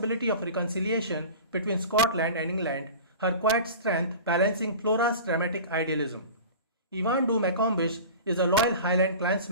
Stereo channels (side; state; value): both; inverted; correlation -0.36